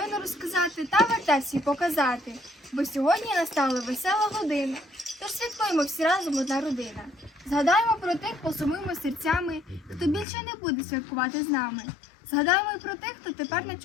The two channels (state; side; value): drops out; right; at 10.2 s